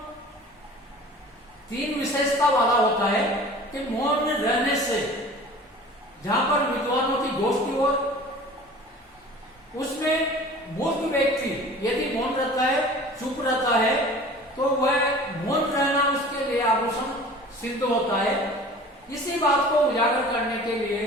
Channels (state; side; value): normal; both; correlation 0.43